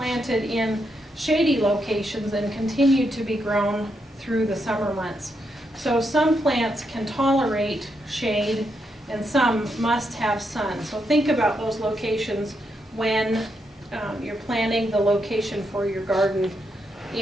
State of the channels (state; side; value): normal; both; correlation 0.81